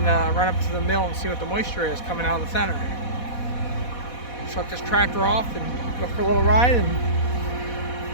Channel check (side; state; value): right; late; 4.1 ms